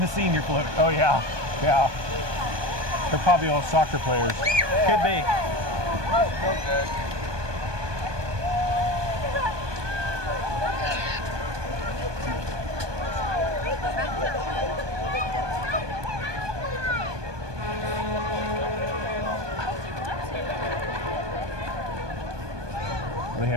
the senior float. Oh, yeah. Yeah. They're probably all soccer players. Could be. They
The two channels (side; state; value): left; late; 1.2 ms